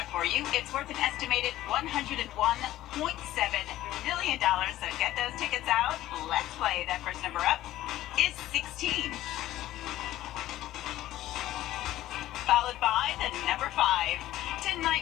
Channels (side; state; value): right; quieter; 14.6 dB